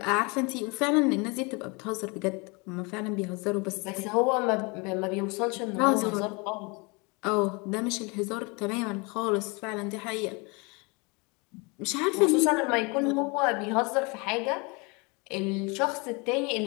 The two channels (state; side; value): quieter; right; 29.1 dB